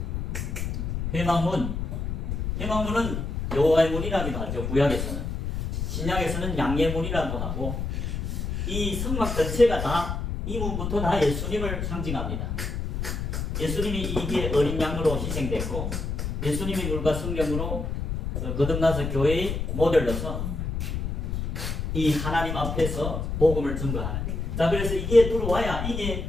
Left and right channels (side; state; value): left; noise; rumble, 3 dB below the sound